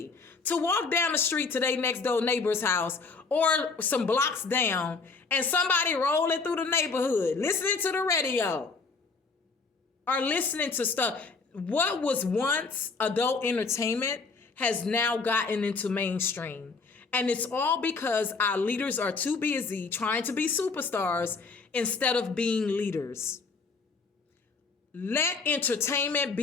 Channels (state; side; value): quieter; right; 4.4 dB